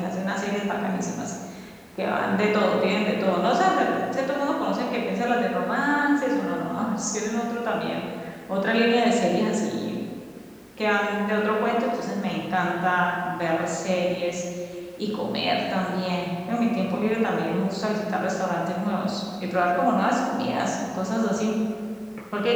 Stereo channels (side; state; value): both; identical; correlation 1.00